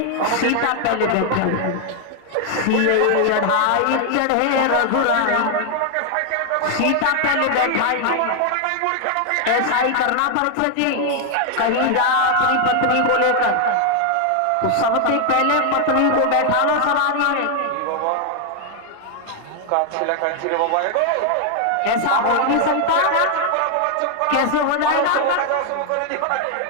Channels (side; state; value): both; different; correlation 0.00